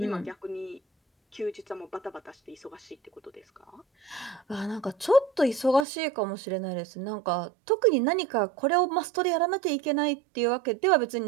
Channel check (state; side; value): drops out; left; at 5.9 s